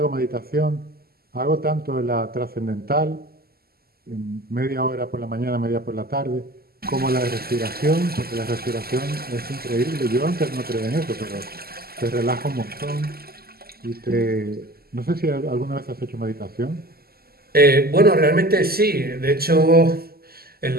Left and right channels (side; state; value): left; late; 0.45 ms